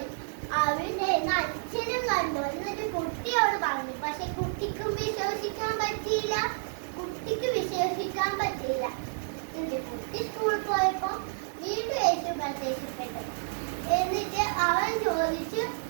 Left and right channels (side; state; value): left; silent; digital silence